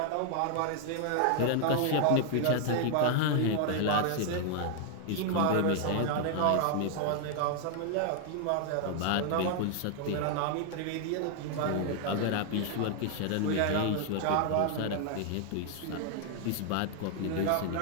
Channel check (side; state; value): both; different; correlation 0.00